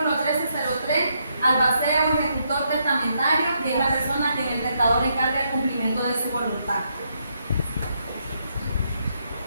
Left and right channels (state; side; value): inverted; both; correlation -0.77